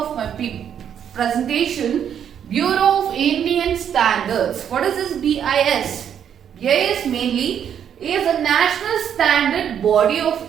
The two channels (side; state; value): left; quieter; 8.8 dB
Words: my presentation, Bureau of Indian Standards. What is this BIS? BIS mainly is a national standard body of